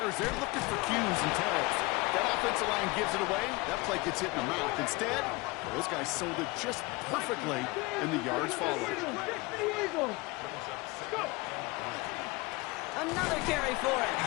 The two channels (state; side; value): quieter; right; 24.0 dB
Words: they're looking for cues and tells. That offensive line gives it away, that play gets hit in the mouth. Instead, those guys sold it just perfectly, and the yards followed. Another carry for him.